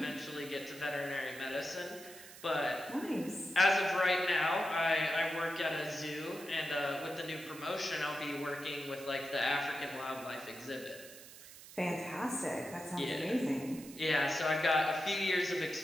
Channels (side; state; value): right; noise; hiss, 17 dB below the sound